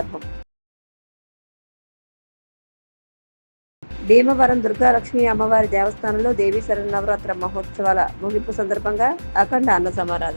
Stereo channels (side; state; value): both; inverted; correlation -1.00